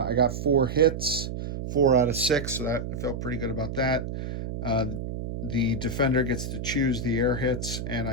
got 4 hits, 4 out of 6, so that I felt pretty good about that. The defender gets to choose the air hits, and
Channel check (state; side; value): noise; right; hum, 5 dB below the sound